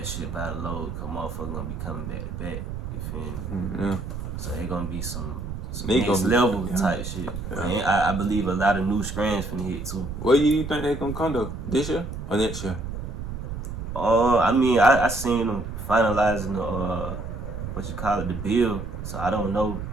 shit by the load, cause motherfuckers gonna be coming back to back. You feel me? Yeah. So it gonna be some next level type shit. Yeah. And I believe a lot of new strands finna hit too. What year you think they gonna come though? This year or next year? I mean I seen them finalizing the bill. So I don't know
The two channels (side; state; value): right; noise; rumble, 7 dB below the sound